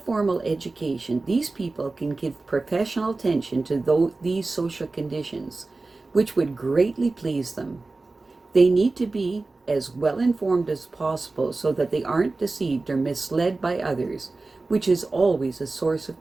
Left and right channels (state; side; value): quieter; left; 3.4 dB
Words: education, these people can give professional attention to these social conditions, which would greatly please them. They need to be as well informed as possible so that they aren't deceived or misled by others, which is always a source